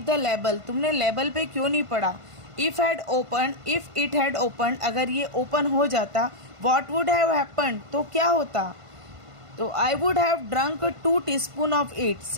the label? तुमने लेबल पे क्यों नहीं पढ़ा? इफ इट हैड ओपन, अगर ये ओपन हो जाता, वॉट वुड हैव हैपन, तो क्या होता? तो I would have drunk 2 teaspoon of it,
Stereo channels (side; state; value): left; late; 1.5 ms